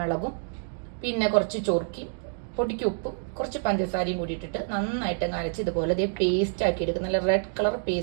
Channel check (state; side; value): silent; left; digital silence